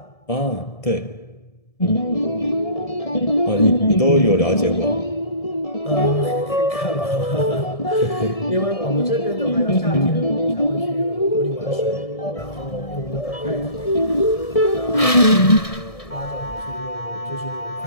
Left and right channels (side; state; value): right; late; 1.7 ms